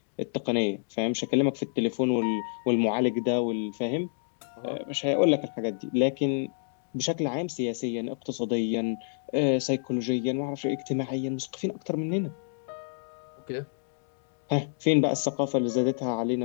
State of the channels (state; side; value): silent; right; digital silence